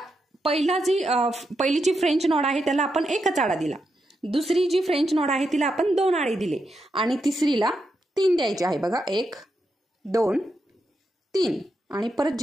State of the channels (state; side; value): normal; both; correlation 0.84